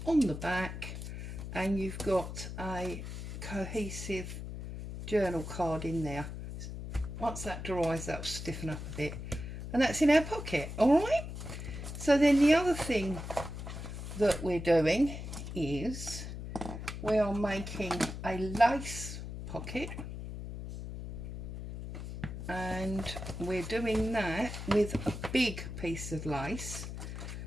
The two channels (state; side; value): noise; left; hum, 8 dB below the sound